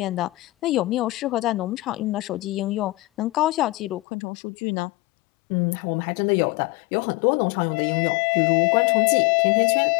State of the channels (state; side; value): drops out; right; at 4.0 s